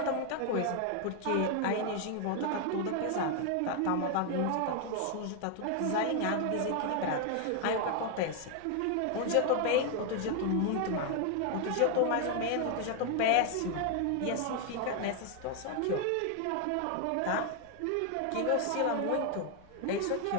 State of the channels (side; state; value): both; different; correlation 0.00